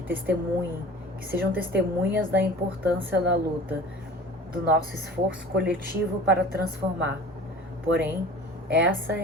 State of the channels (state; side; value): normal; both; correlation 0.42